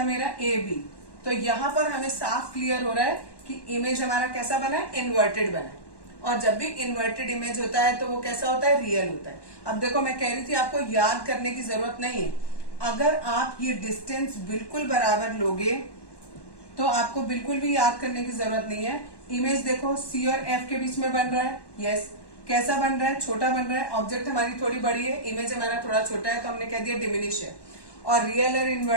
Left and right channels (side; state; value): right; late; 1.1 ms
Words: मेरा ए बी। तो यहाँ पर हमें साफ क्लियर हो रहा है कि इमेज हमारा कैसा बना है? इन्वर्टेड बना है। और जब भी इन्वर्टेड इमेज होता है तो वो कैसा होता है? रियल होता है। अब देखो, मैं कह रही थी आपको याद करने की जरूरत नहीं है। अगर आप ये डिस्टेंस बिल्कुल बराबर लोगे तो आपको बिल्कुल भी याद करने की जरूरत नहीं है। इमेज देखो, सी और एफ के बीच में बन रहा है। यस, कैसा बन रहा है? छोटा बन रहा है। ऑब्जेक्ट हमारी थोड़ी बड़ी है, इमेज हमारा थोड़ा छोटा है, तो हमने कह दिया डिमिनिश है। और रियल और